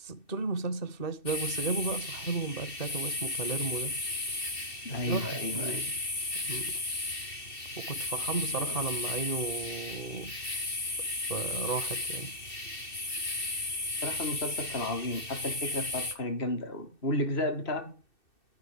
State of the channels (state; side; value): late; right; 2.6 ms